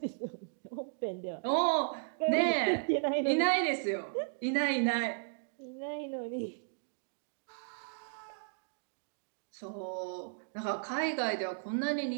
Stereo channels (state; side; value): silent; left; digital silence